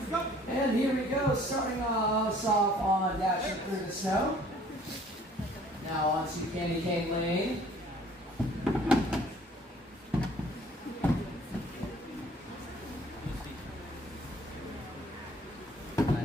And here we go, starting us off on dashing through the snow. Now on to Candy Cane Lane.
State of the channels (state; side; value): normal; both; correlation 0.55